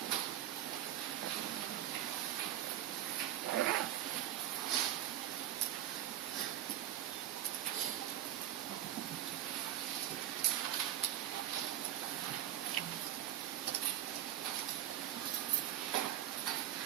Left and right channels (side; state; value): left; quieter; 12.2 dB